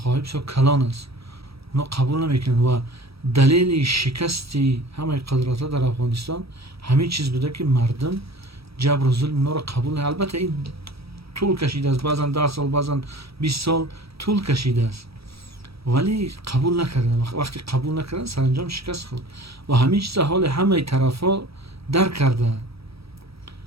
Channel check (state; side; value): late; left; 0.77 ms